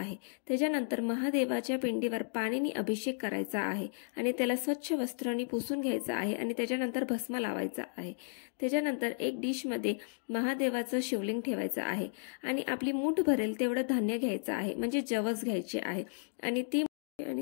त्याच्यानंतर महादेवाच्या पिंडीवर पाणीने अभिषेक करायचा आहे आणि त्याला स्वच्छ वस्त्रांनी पुसून घ्यायचं आहे आणि त्याच्यानंतर भस्म लावायचा आहे. त्याच्यानंतर एक डिशमध्ये महादेवाचं शिवलिंग ठेवायचं आहे आणि आपली मूठ भरेल तेवढं धान्य घ्यायचं आहे, म्हणजे जवस घ्यायचे आहे आणि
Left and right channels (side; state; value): right; silent; digital silence